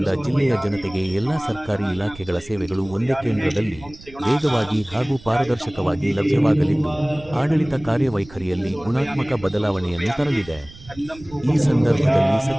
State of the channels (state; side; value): noise; right; rumble, 20 dB below the sound